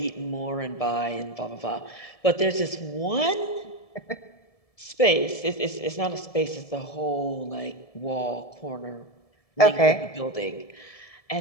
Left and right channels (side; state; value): right; late; 1.7 ms